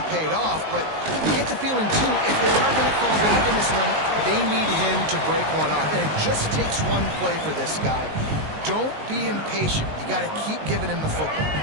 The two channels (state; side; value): late; left; 19 ms